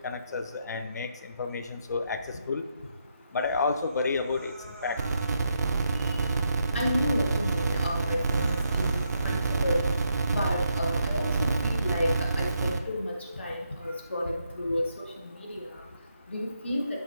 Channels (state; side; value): inverted; both; correlation -0.79